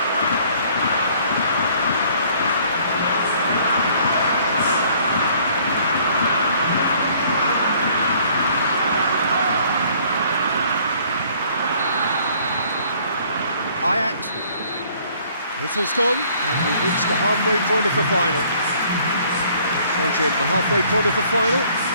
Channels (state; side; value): inverted; both; correlation -0.59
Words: Whistle's gone, and we've reached the halfway point of the final. So, Jim, the halfway point of the final,